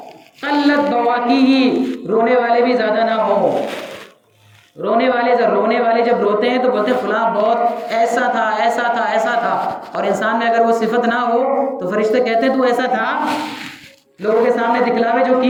قلت بواکیہ، رونے والے بھی زیادہ نہ ہو. رونے والے جب روتے ہیں تو بولتے ہیں فلاں بہت ایسا تھا ایسا تھا ایسا تھا، اور انسان میں اگر وہ صفت نہ ہو تو فرشتے کہتے ہیں تو ایسا تھا لوگوں کے سامنے دکھلاوے جو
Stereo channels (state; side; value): identical; both; correlation 1.00